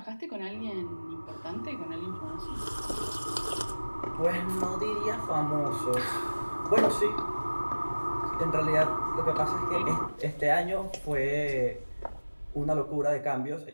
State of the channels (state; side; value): inverted; both; correlation -1.00